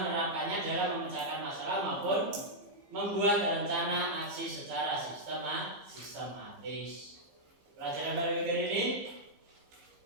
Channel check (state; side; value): late; left; 15 ms